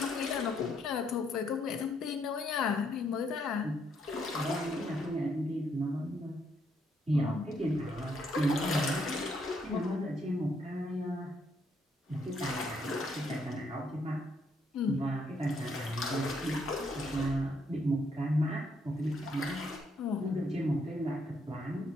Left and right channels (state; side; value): normal; both; correlation 0.73